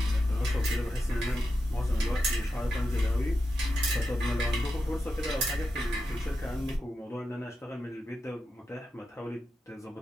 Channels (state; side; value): normal; both; correlation 0.89